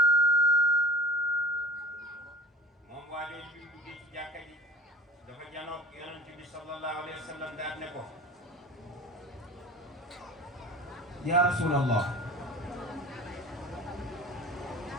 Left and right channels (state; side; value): normal; both; correlation 0.40